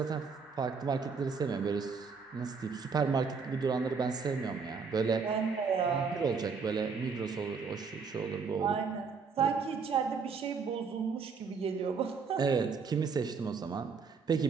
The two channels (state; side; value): quieter; left; 5.4 dB